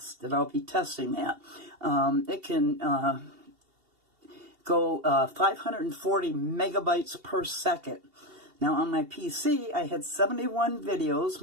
and I'll be testing that. It can go 540 megabytes per second. Now on my PC, I had 71 videos,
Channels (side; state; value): left; late; 2.7 ms